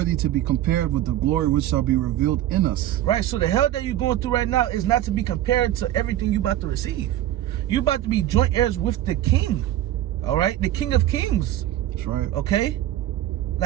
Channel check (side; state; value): left; quieter; 13.1 dB